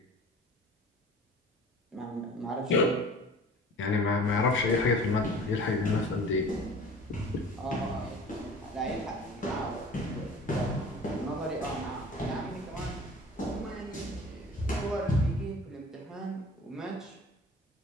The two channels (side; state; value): both; normal; correlation 0.43